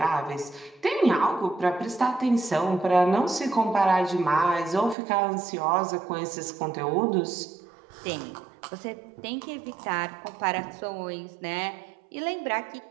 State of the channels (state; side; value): drops out; left; at 5.0 s